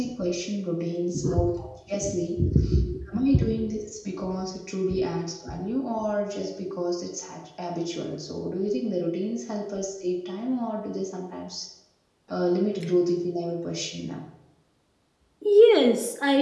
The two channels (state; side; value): identical; both; correlation 1.00